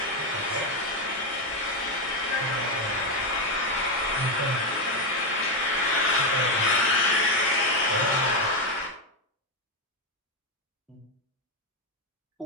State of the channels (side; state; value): both; normal; correlation 0.06